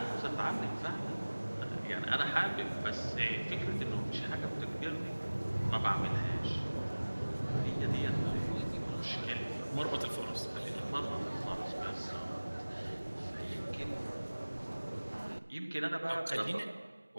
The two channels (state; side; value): inverted; both; correlation -1.00